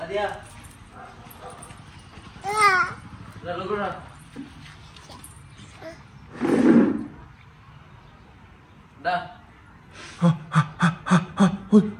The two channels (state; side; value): identical; both; correlation 1.00